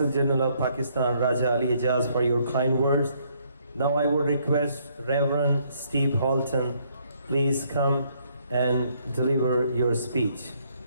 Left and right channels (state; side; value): inverted; both; correlation -0.69